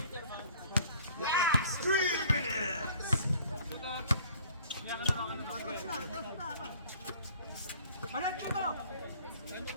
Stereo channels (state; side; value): inverted; both; correlation -0.54